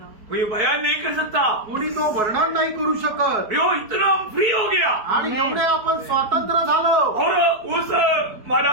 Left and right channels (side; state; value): left; late; 4.5 ms